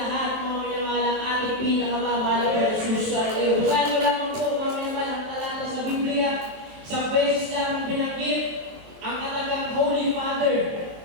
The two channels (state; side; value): late; left; 23 ms